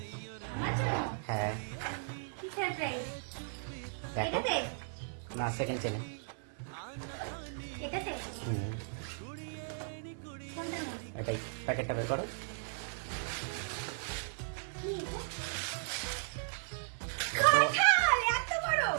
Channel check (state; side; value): silent; left; 54 dB below the other